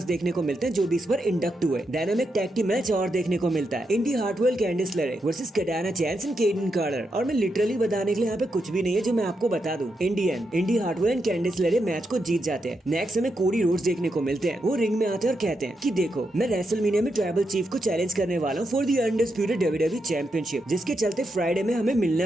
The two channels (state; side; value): normal; both; correlation 0.84